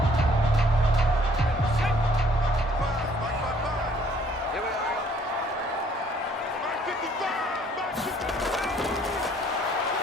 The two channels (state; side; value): normal; both; correlation 0.61